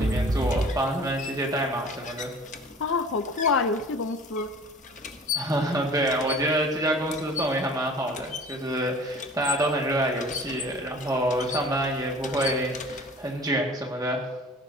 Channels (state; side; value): normal; both; correlation 0.45